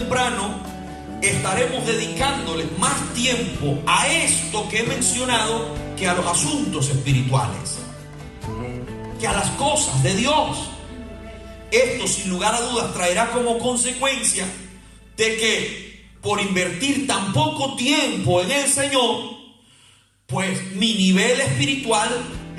estaremos dedicándole más tiempo a esto que he mencionado que a los asuntos espirituales, que a las cosas de Dios. Esto, sin lugar a dudas, traerá como consecuencia de que por invertir tan poco tiempo en el Señor, pues mi nivel espiritual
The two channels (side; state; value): both; identical; correlation 1.00